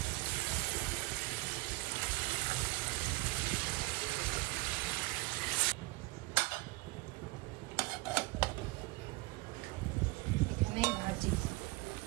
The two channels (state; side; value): quieter; left; 22.4 dB